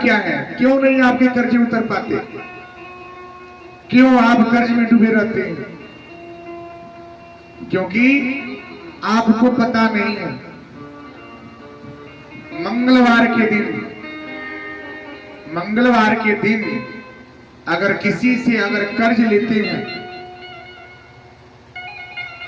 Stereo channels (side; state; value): both; identical; correlation 1.00